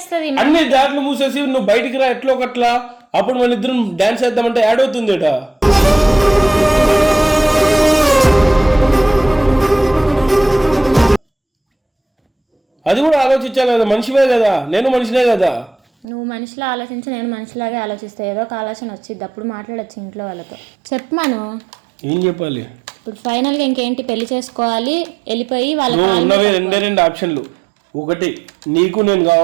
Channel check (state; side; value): drops out; left; at 16.1 s